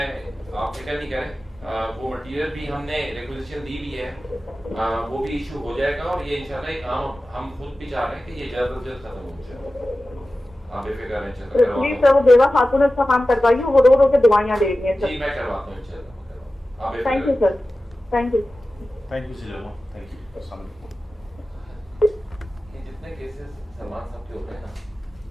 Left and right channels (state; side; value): normal; both; correlation 0.95